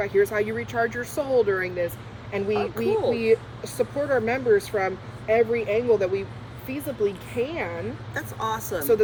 here's how you recharge your soul during this. And we support our members from every angle that we feasibly can. That's awesome. So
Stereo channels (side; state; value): both; identical; correlation 1.00